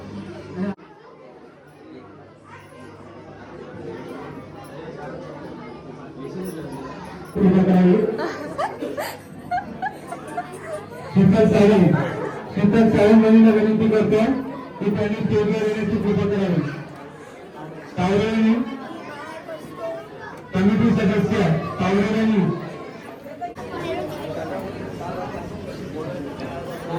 शीतल सावंत यांना विनंती करतो की त्यांनी स्टेजवर येण्याची कृपा करावी. तावरेंनी कमिटी सदस्य तावरेंनी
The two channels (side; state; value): both; identical; correlation 1.00